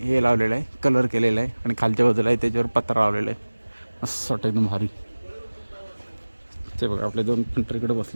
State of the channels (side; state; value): both; inverted; correlation -1.00